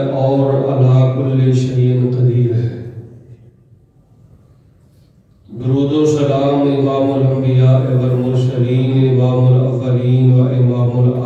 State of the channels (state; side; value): identical; both; correlation 1.00